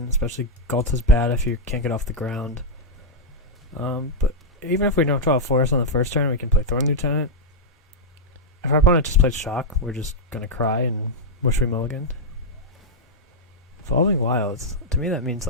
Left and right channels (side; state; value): both; normal; correlation -0.05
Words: especially Galt is bad if you can't get off the ground. But even if we don't draw a forest on the first turn, we can play Thorn Lieutenant. If our opponent just plays Shock, we're just gonna cry and wish we mulliganed. Evolving Wilds, to me that means